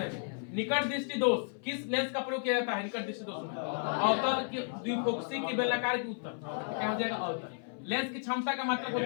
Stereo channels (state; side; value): silent; right; 56 dB below the other